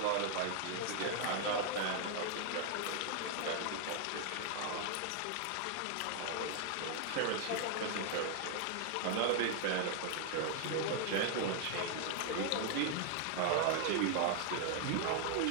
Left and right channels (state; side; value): different; both; correlation 0.00